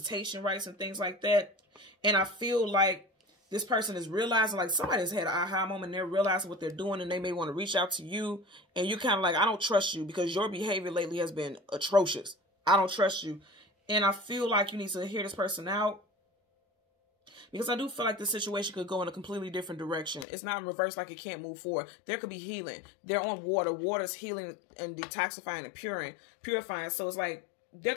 rights and things like that. And I feel like this person is realizing, like somebody's had an aha moment and they're realizing what they're doing and they may want to reach out to you. And you kind of like, I don't trust you because your behavior lately has been atrocious. I don't trust you. And I feel like you need to hear this person out. Because I do feel like the situation could go in a completely different direction. It's not in reverse like it can't move forward. There could be healing. They're on water. Water's healing and detoxifying and purifying. So it's like there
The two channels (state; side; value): drops out; right; at 20.2 s